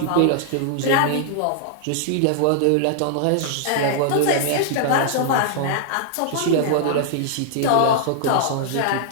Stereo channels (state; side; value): different; both; correlation -0.01